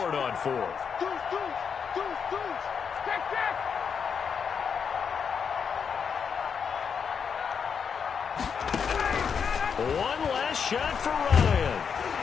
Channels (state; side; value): quieter; right; 6.6 dB